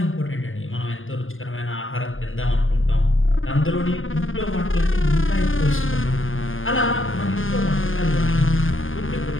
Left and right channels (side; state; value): right; late; 0.58 ms